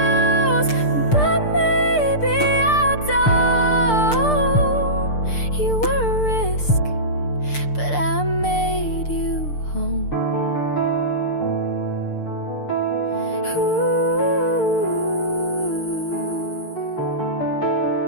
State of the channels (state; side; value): late; right; 6.7 ms